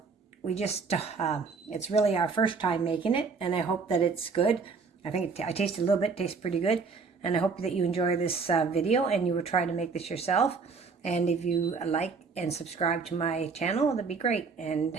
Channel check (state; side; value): quieter; left; 4.9 dB